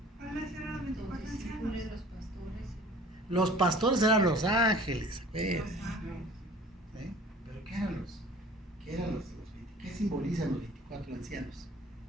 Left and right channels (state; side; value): normal; both; correlation 0.48